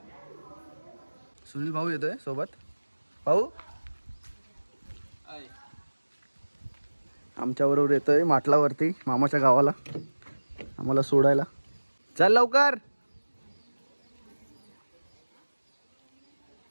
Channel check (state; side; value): inverted; both; correlation -1.00